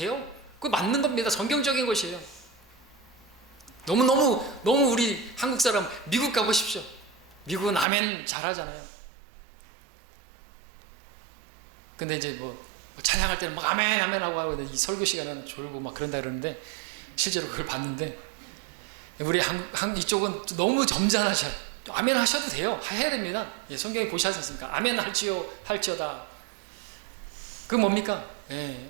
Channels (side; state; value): left; drops out; at 7.9 s